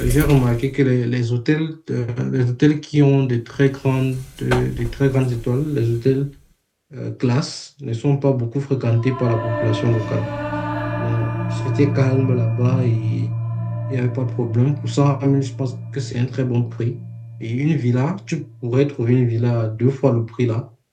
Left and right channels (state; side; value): identical; both; correlation 1.00